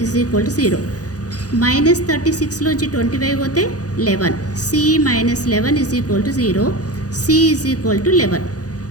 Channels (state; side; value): late; right; 0.67 ms